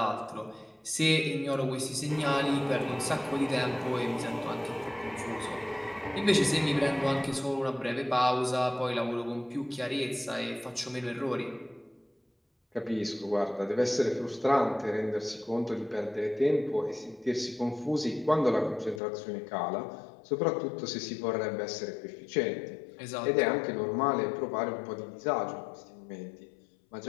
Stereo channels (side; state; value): right; drops out; at 19.0 s